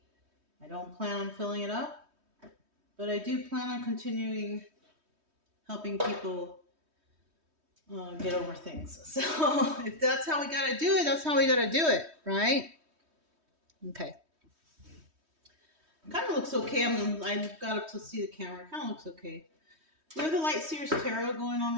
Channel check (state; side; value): late; left; 3.2 ms